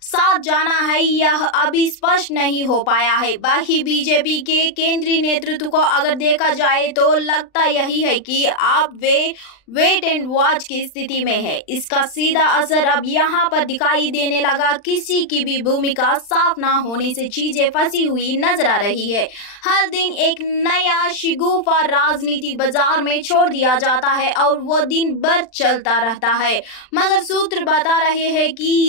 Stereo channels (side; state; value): right; late; 39 ms